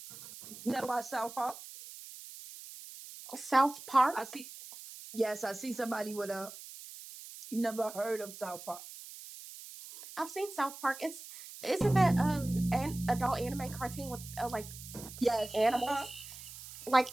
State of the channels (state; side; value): noise; right; hiss, 14 dB below the sound